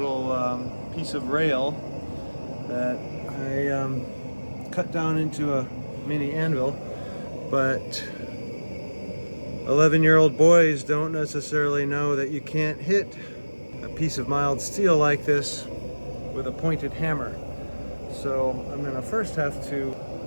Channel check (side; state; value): both; inverted; correlation -1.00